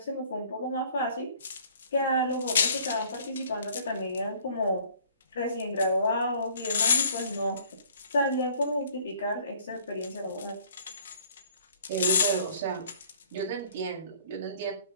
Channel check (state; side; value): inverted; both; correlation -0.56